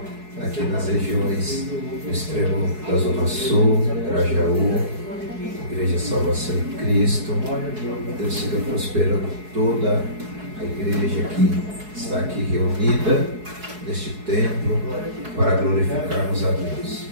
aqui nas regiões do extremo da Zona Sul, Grajaú, Igreja Salvação em Cristo. Deus siga prosperando toda a igreja que está aqui reunida neste templo para glorificarmos a Deus.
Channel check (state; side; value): late; left; 4.7 ms